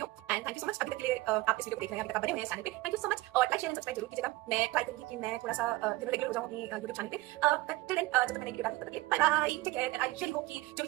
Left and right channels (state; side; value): quieter; left; 19.3 dB